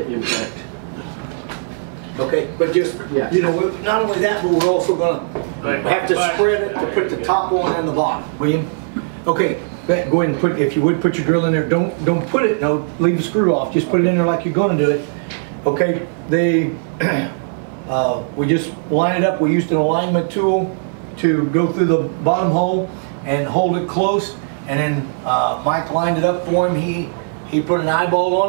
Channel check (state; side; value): silent; left; 57 dB below the other